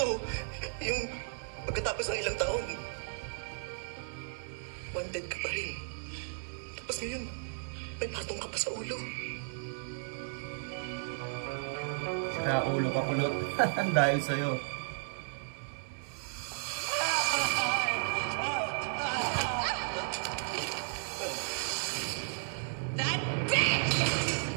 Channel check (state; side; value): silent; left; 55 dB below the other